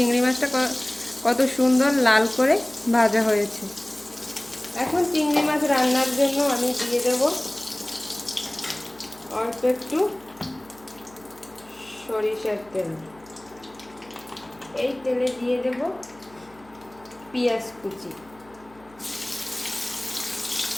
মাছটা কত সুন্দর লাল করে ভাজা হয়েছে। এখন চিংড়ি মাছ রান্নার জন্য আমি দিয়ে দেব অল্প একটু সরিষার তেল। এই তেলে দিয়ে দেব পেঁয়াজ কুচি।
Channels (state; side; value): noise; left; hum, 26 dB below the sound